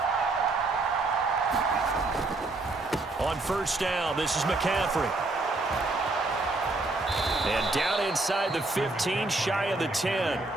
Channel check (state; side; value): quieter; left; 3.1 dB